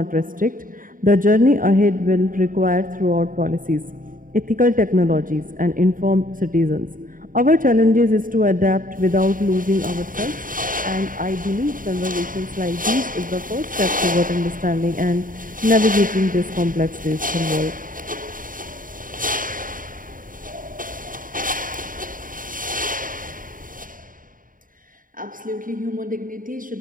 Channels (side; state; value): left; late; 0.40 ms